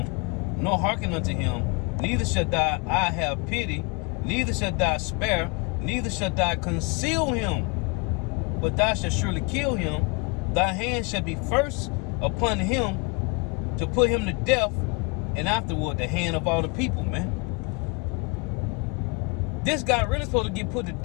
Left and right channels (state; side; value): quieter; right; 30.1 dB